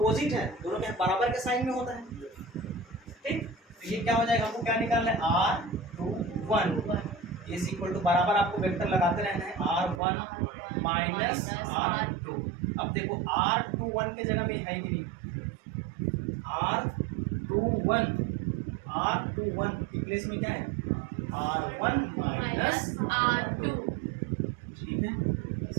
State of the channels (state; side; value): drops out; left; at 10.0 s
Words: है, दोनों के बराबर के साइन में होता है, ठीक, तो ये क्या हो जाएगा, हमको क्या निकालना है, R21 इज इक्वल टू, बराबर आपको वेक्टर लगाते रहना है, R1 माइनस R2। अब देखो R21 के जगह में है कि नहीं, R21 के प्लेस में क्या है, R1 माइनस R2, ठीक है,